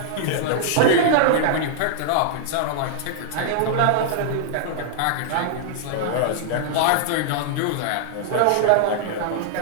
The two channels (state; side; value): different; both; correlation -0.01